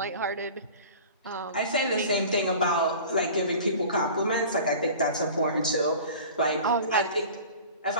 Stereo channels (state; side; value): inverted; both; correlation -0.40